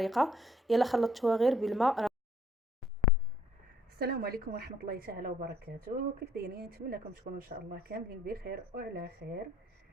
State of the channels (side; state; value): both; normal; correlation 0.62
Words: يلا خلطتوها غير بالماء. السلام عليكم ورحمه الله تعالى وبركاته. كيف دايرين؟ نتمنىكم تكونوا ان شاء الله كاملين بخير وعلى خير.